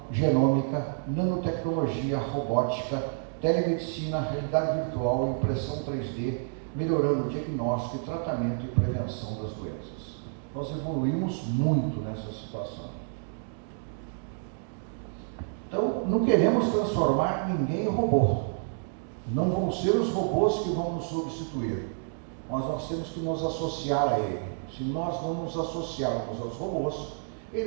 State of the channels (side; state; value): left; silent; digital silence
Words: genômica, nanotecnologia, robótica, telemedicina, realidade virtual, impressão 3D, melhorando o diagnóstico e tratamento e prevenção das doenças. Nós evoluímos muito nessa situação. Então, não queremos transformar ninguém em robô. Não vão ser os robôs que vão nos substituir, mas nós temos que nos associar a ele. Se nós não nos associarmos aos robôs,